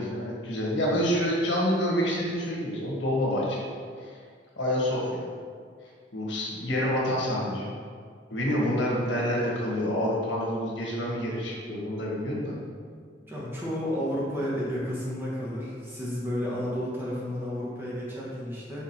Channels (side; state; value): both; normal; correlation 0.46